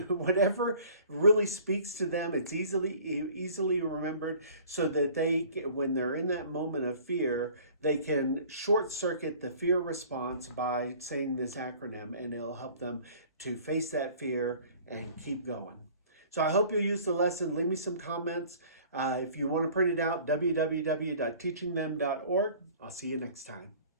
Whatever really speaks to them, it's easily remembered, so that they, when they're in that moment of fear, they can short circuit the fear response by saying this acronym, and it'll help them to face that fear and keep going. So I hope you'll use the lesson. Leave me some comments. If you want to print it out, www.teachingthem.org. I'll see you next time.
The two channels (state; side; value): inverted; both; correlation -0.49